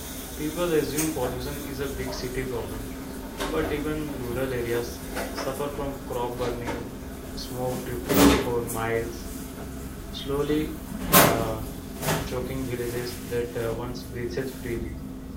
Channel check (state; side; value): identical; both; correlation 1.00